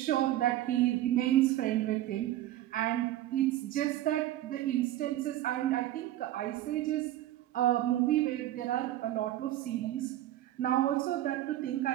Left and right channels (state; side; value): quieter; left; 13.8 dB